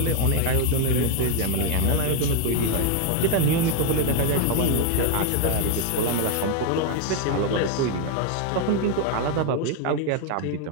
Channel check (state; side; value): different; both; correlation 0.00